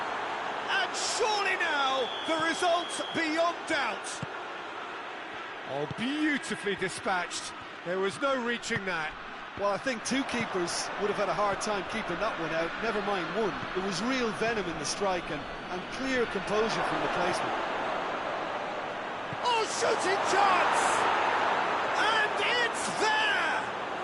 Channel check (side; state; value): both; identical; correlation 1.00